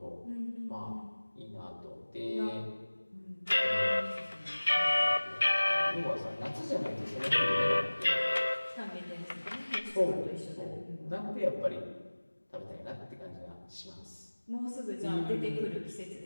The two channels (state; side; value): inverted; both; correlation -1.00